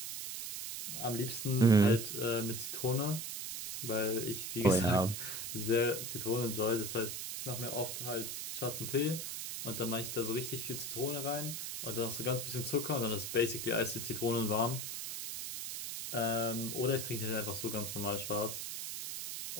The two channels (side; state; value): right; noise; hiss, 5 dB below the sound